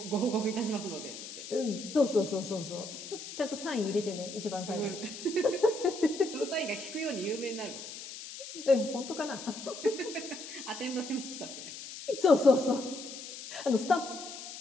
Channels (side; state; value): left; noise; hiss, 11 dB below the sound